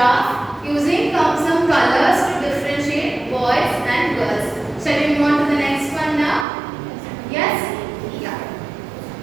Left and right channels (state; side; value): drops out; left; at 6.5 s